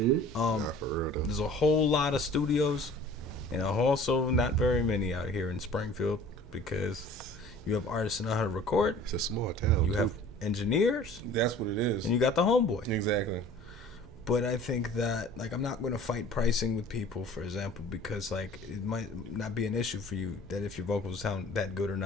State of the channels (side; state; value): both; normal; correlation 0.47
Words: though. There's a whole lot of studios, and also not very many out here in Springfield because you have artists that know how to record. It's a small town. You have engineers. That's what it is. And you got the homeboy. Exactly. But I think that, like, I'm not going to fight pricing with people, for example, because, like, it might not be an issue for you that if your vocals sound that good or